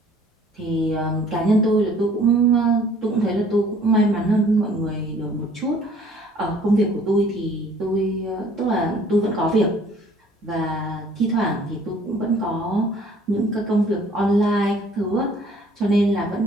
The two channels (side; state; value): both; normal; correlation 0.55